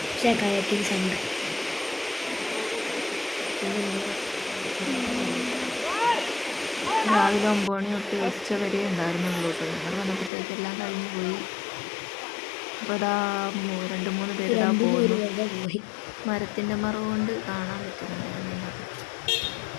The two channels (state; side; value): drops out; right; at 10.3 s